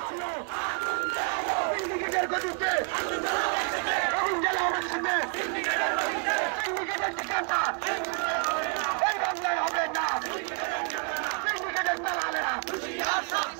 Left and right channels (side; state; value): left; quieter; 37.1 dB